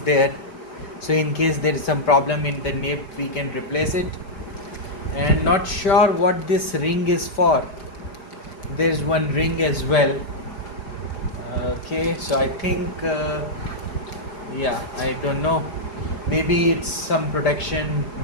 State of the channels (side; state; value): right; late; 4.7 ms